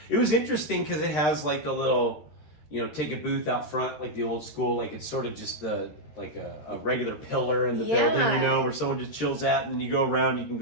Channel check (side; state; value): right; late; 13 ms